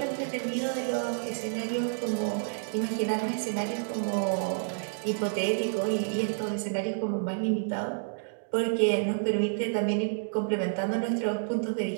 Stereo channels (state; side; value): silent; left; digital silence